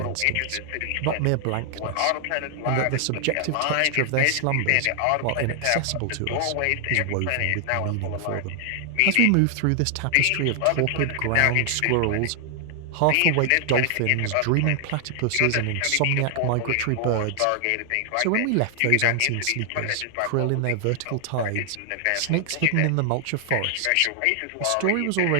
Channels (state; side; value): different; both; correlation 0.00